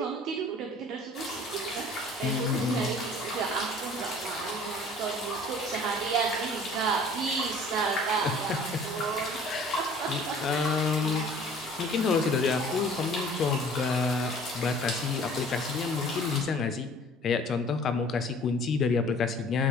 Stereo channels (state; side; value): normal; both; correlation 0.50